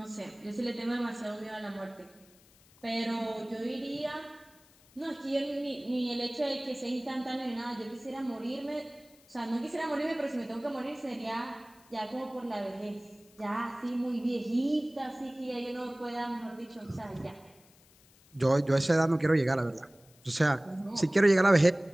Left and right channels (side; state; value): left; noise; hiss, 28 dB below the sound